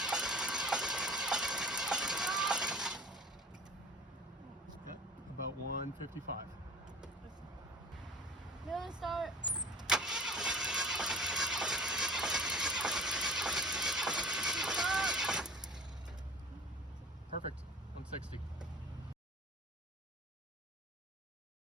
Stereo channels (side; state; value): both; normal; correlation 0.42